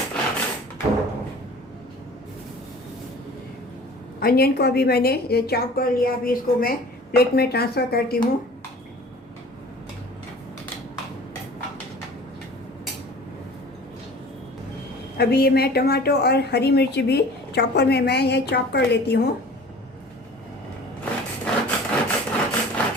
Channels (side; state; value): both; normal; correlation 0.44